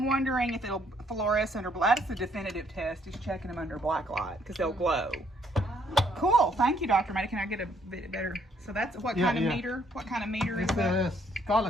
wondering if it'll fluoresce under black. That's the definitive test. He's checking them under black light because they'll glow. Cool. Thank you, Dr. Maida. Can I get a bit better? So that's what kind of meter? What kind of meter is that? It's called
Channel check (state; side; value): normal; both; correlation 0.68